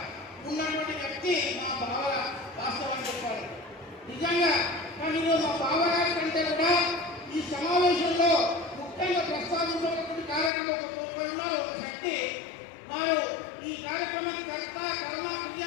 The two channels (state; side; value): drops out; right; at 10.5 s